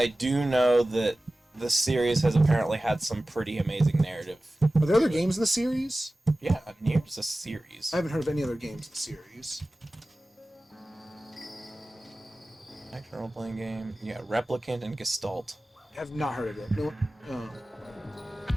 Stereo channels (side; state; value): both; normal; correlation 0.96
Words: do know that the series has apparently had some pretty amazing narrative. Are there other games in the series? Yeah, Nier's a series. I haven't heard of any other games in the series. Action role-playing game. Yeah, Replicant and Gestalt. I have not heard of it. No. Oh.